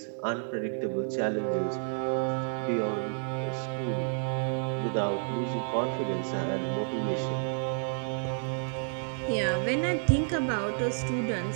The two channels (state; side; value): silent; left; digital silence